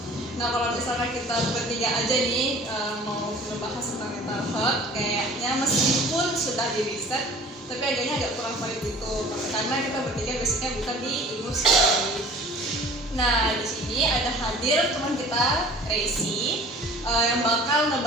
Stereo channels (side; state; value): both; normal; correlation 0.46